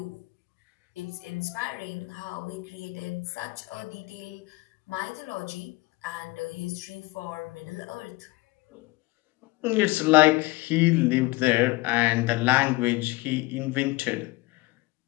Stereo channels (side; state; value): right; quieter; 22.0 dB